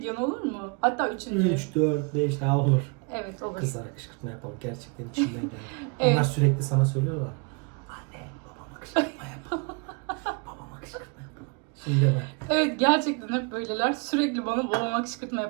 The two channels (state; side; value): quieter; left; 33.3 dB